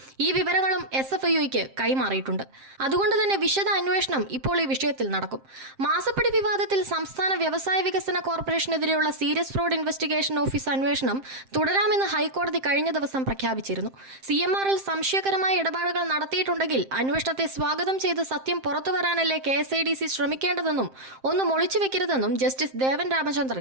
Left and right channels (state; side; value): late; left; 7.6 ms